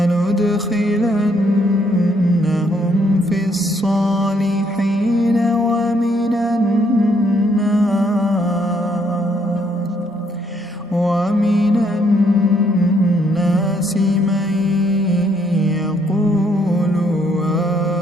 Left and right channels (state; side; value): normal; both; correlation 0.70